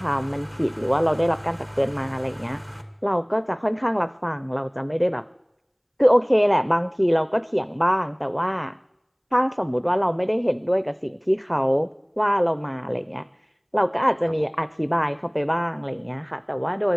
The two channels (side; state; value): both; identical; correlation 1.00